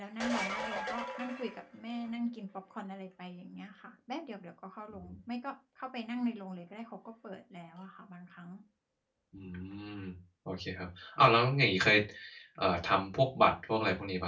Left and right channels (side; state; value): both; identical; correlation 1.00